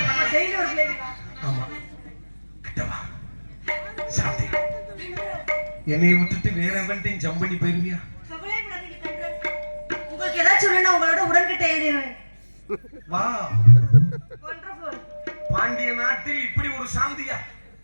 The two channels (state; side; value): inverted; both; correlation -1.00